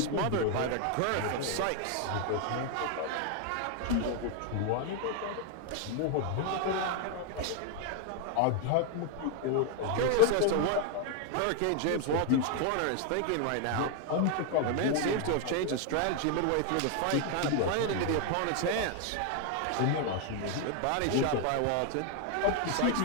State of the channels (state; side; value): different; both; correlation 0.00